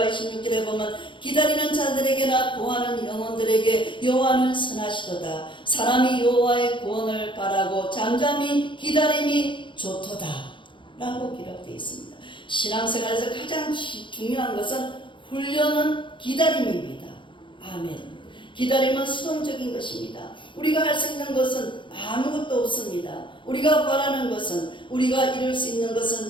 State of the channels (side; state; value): right; late; 0.24 ms